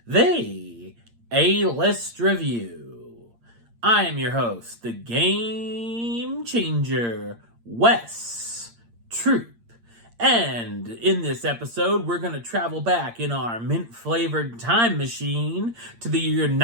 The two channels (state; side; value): late; left; 8.7 ms